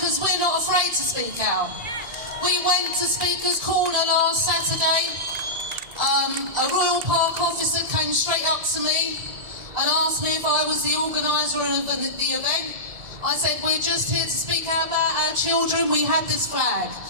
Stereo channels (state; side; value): late; left; 1.7 ms